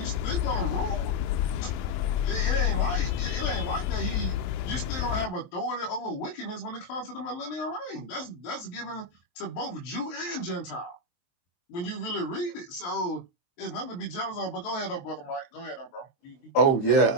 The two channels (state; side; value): late; right; 23 ms